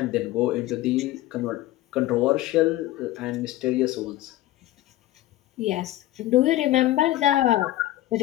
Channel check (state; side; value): quieter; right; 15.5 dB